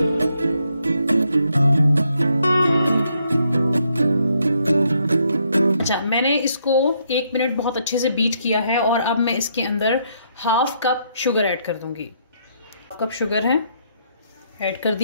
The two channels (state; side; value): inverted; both; correlation -0.74